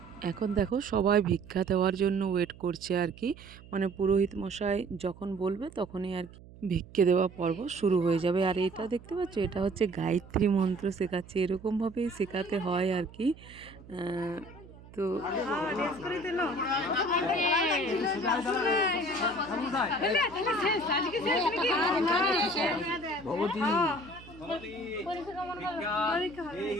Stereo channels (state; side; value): noise; right; hum, 20 dB below the sound